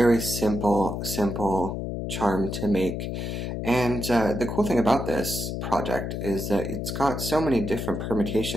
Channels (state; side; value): noise; left; hum, 4 dB below the sound